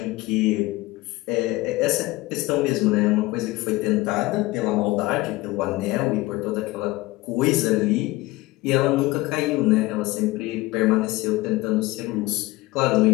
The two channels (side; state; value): right; quieter; 19.9 dB